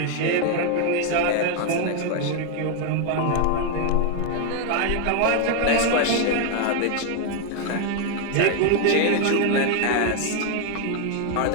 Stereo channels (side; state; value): both; different; correlation 0.01